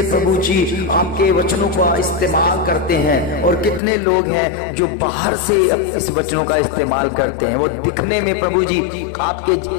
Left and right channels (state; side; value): drops out; right; at 3.8 s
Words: प्रभु जी आपके वचनों का इस्तेमाल करते हैं, और कितने लोग हैं जो बाहर से इस वचनों का इस्तेमाल करते हैं। वो दिखने में प्रभु जी